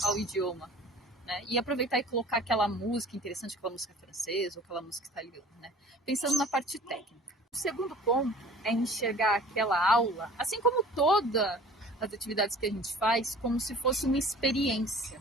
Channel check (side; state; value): both; normal; correlation 0.47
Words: ao idioma, né? E aproveitar e colocar aquela música interessante, aquela música francesa ou aquela música italiana, né? Pensando na parte técnica. O segundo ponto é enxergar aquela aula, assim como todas as atividades que a gente faz, como se fosse uma experiência.